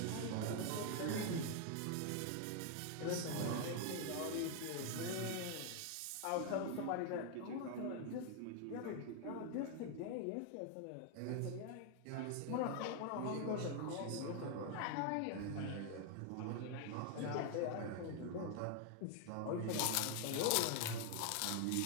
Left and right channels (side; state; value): both; different; correlation 0.00